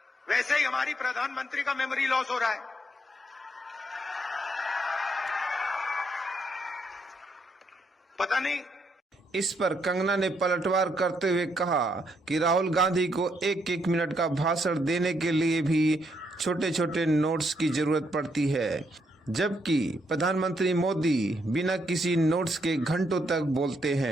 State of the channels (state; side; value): normal; both; correlation 0.75